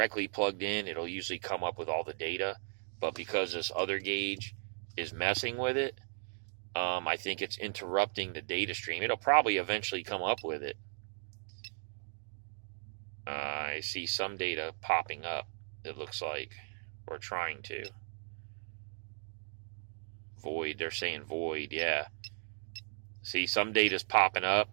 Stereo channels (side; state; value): left; silent; digital silence